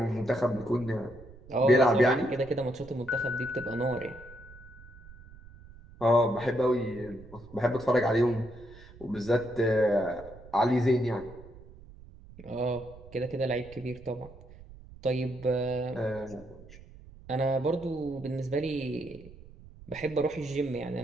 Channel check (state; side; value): noise; right; rumble, 19 dB below the sound